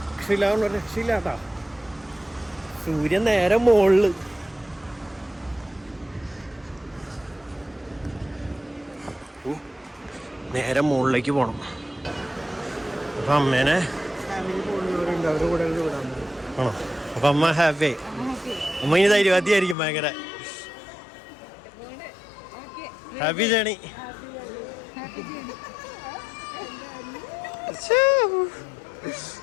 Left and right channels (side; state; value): right; drops out; at 19.8 s